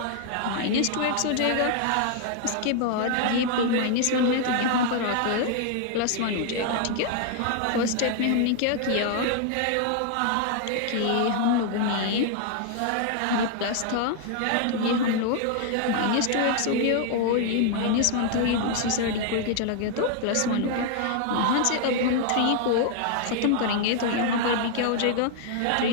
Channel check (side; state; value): both; different; correlation 0.00